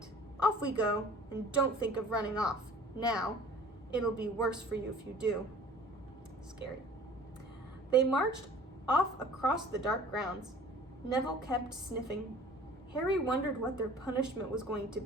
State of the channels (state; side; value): normal; both; correlation 0.48